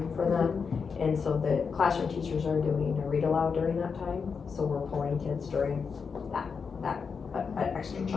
for them. And so the classroom teachers are doing a read aloud during that time, so we're pulling kids during that extra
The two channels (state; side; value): quieter; right; 5.7 dB